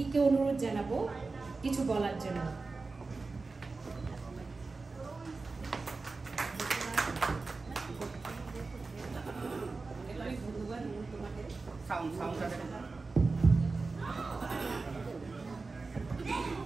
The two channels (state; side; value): quieter; left; 3.9 dB